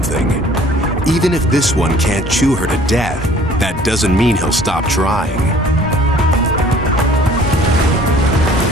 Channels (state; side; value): normal; both; correlation 0.53